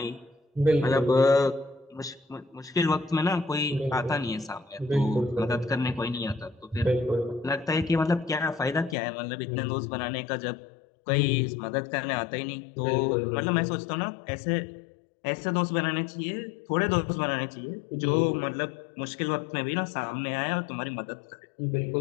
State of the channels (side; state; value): right; drops out; at 9.0 s